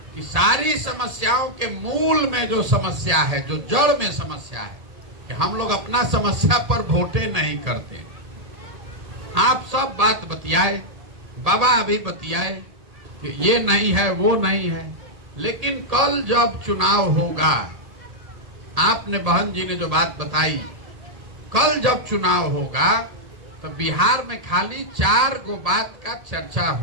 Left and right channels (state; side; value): late; left; 1.8 ms